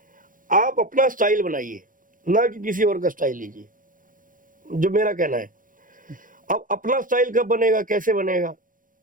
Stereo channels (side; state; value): left; late; 0.39 ms